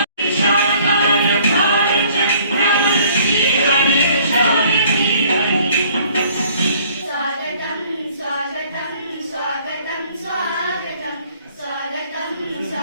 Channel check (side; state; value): both; inverted; correlation -0.57